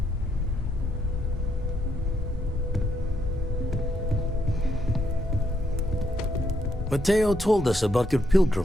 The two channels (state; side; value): normal; both; correlation 0.76